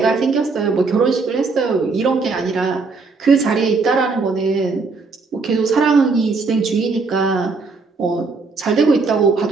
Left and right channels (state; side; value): quieter; left; 4.2 dB